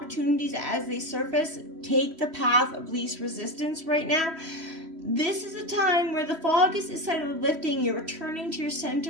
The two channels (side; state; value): left; late; 3.1 ms